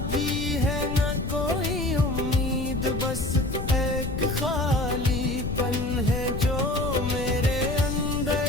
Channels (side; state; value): left; noise; rumble, 5 dB below the sound